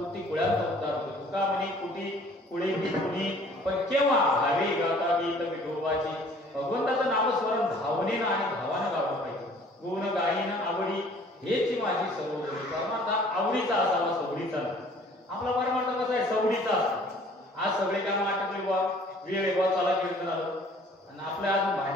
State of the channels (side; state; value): both; normal; correlation 0.54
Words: कुळ्यांचा उद्धार होतो. तुका म्हणे कोटी कुळे ही कुणी पण केव्हा भावे गाता गीत विठोबाची. भगवंताचं नामस्मरण भावनेनं आणि भावानं गावलं पाहिजे. गुण गायन आवडी हेची माझी सर्वोदय. परमार्थ आवडीचा असावा, सवडीचा नाही. आपला परमार्थ कसा आहे, सवडीचा असतो. आज सगळे काम आटकले बा, वेळ बा, चला कीर्तन आलं आणि आपल्या आज